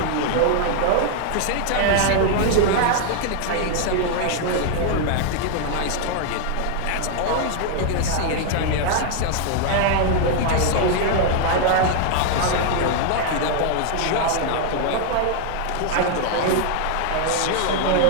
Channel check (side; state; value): both; different; correlation 0.00